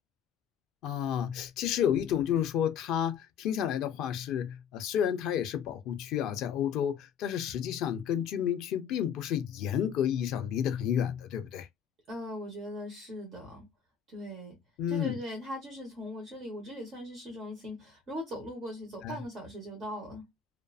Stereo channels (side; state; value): right; quieter; 8.0 dB